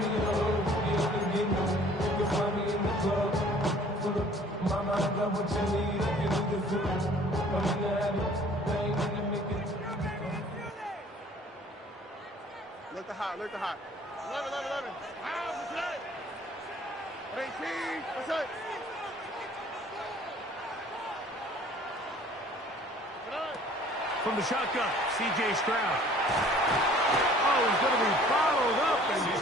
Look the hot, look the hot. 11. What's up? 18, what's up? From the shotgun, C.J. Stroud. Oh, he's going to be followed up and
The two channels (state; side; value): normal; both; correlation 0.53